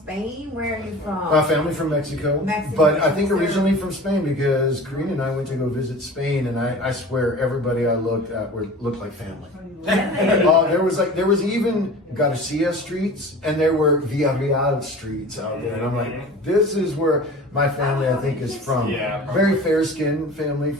Where are you from? family from Mexico, Mexico. but I think originally from Spain because Karina and I went to go visit Spain, and I swear everybody I looked at looked like family. There was even Garcia streets, and there were Villarreal streets out there, and I'm like, this is where my family I think is from. Yeah. Very fair skinned family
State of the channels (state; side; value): normal; both; correlation 0.39